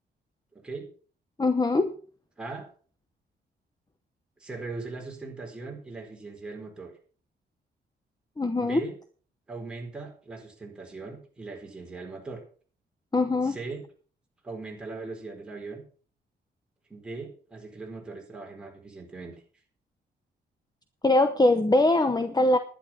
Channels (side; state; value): both; normal; correlation 0.73